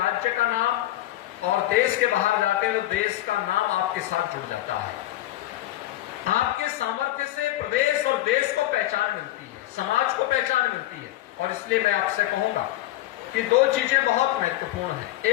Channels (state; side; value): quieter; right; 15.3 dB